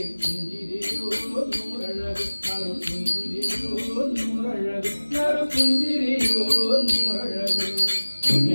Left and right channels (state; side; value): inverted; both; correlation -1.00